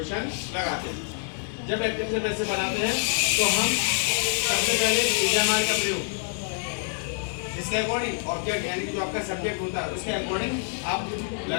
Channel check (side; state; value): right; silent; 61 dB below the other